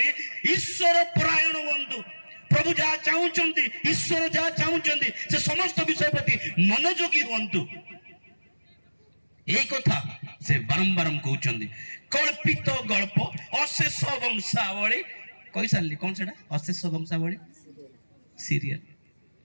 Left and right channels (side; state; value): both; inverted; correlation -1.00